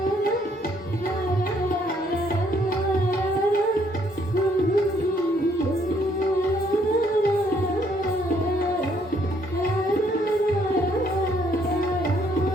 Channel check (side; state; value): both; normal; correlation 0.67